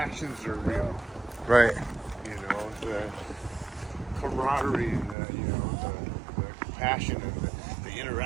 are real. Right. You know, the camaraderie and the compassion and the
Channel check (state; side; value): drops out; left; at 5.2 s